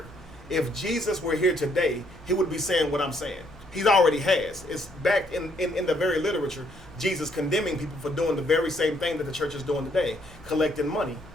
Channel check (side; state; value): both; normal; correlation 0.69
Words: If Jesus were here today, he would be saying what I'm saying. He already has. It's back in the very literature, Jesus condemning people for doing the very same thing that the church is doing today, collecting money.